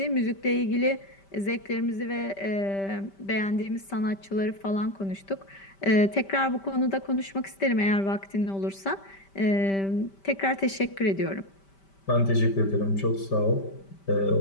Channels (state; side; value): late; right; 5.1 ms